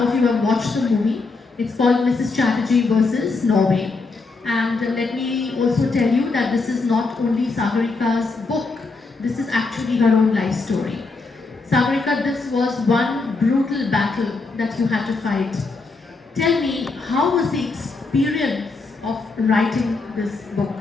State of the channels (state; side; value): quieter; right; 3.9 dB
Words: of you have watched the movie. It's called Mrs. Chatterjee versus Norway. And let me also tell you that this is not only Sagarika's book, this is actually her own life story. Sagarika, this was one brutal battle that you had to fight. Tell me, how was the experience of writing this book?